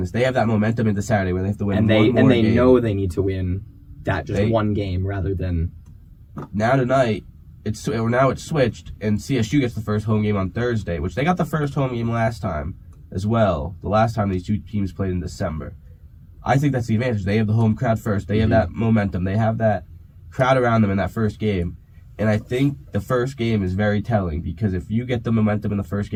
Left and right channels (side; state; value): both; identical; correlation 1.00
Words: they have that momentum into Saturday where they have to win And one more they game. know they need to win that one game rather than... Now tonight, it's switched, and CSU gets the first home game on Thursday, which they got the first home game last time as well. The last time these two teams played in December. I think that's the advantage. They have the home crowd first. They have that momentum. They have that crowd around them in that first game. And I think the first game is very telling because if you get the momentum in the first